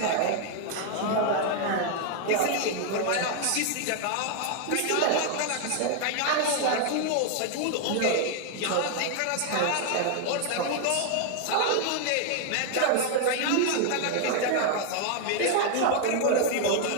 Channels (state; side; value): different; both; correlation 0.00